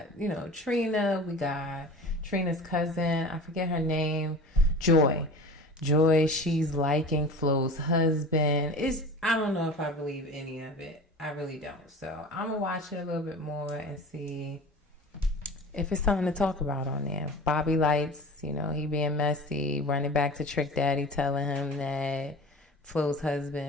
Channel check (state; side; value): normal; both; correlation 0.37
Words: Trina. We got Trina's cousin. I forget her name. Joy, she's liking Flo's husband. I don't know if I believe any of it. I really don't. So I'm going to watch it a little bit more and see if it's something to talk about on there. Bobby Lights, he being messy, running back to Trick Daddy, telling him that Flo's